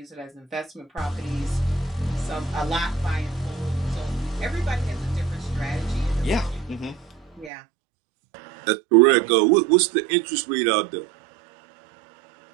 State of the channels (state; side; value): drops out; left; at 7.5 s